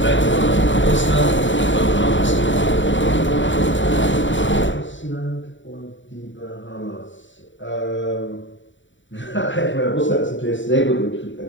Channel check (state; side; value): late; right; 0.55 ms